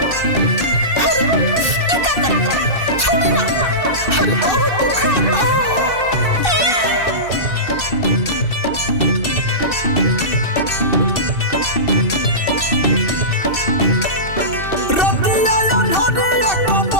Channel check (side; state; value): right; late; 2.6 ms